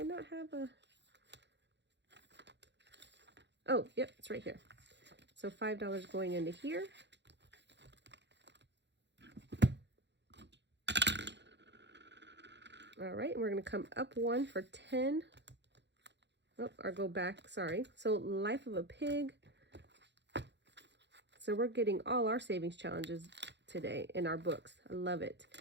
not have a... Oh, yep, it's right here. So $5 going into here. All right, and we're going to come up 1 for 10. Oh, or go back, sorry. So Life of a Pig. So we're getting all our savings challenges today in our books. I love it.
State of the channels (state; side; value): late; left; 0.51 ms